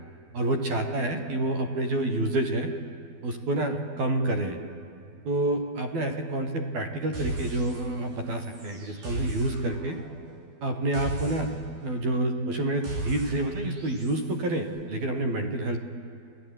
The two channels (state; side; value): late; left; 12 ms